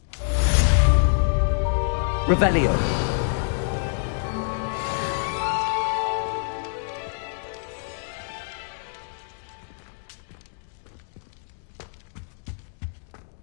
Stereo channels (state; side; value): silent; right; digital silence